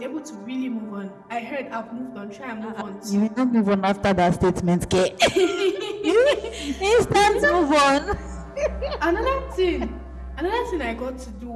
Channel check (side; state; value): both; identical; correlation 1.00